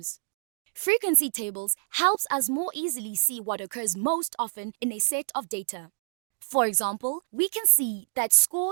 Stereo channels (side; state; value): left; silent; digital silence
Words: Frequency tables helps us more easily see what occurs most often in a set of data. For example, we can see that